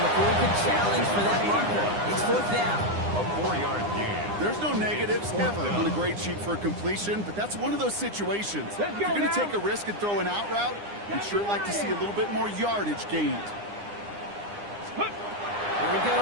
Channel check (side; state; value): left; late; 9.8 ms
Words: he could challenge for that marker. It's 4th down. A 4-yard gain. There's no negatives ever on a grade sheet for a completion, but that's one of those situations. If you're going to take a risk and throw an out route, you'd sure like to see a little bit more yardage gained. Here he